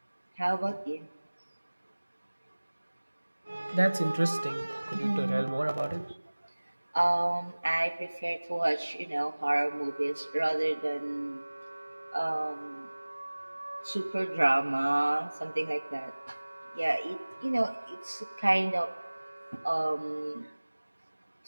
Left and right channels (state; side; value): inverted; both; correlation -1.00